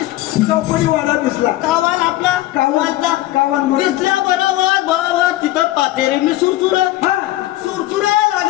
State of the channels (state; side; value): quieter; right; 16.3 dB